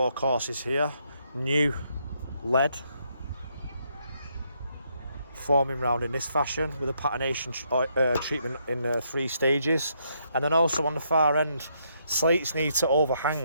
courses here. New lead forming round in this fashion with a patination treatment in 3 stages. And then also on the far end, slates need to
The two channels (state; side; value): inverted; both; correlation -0.75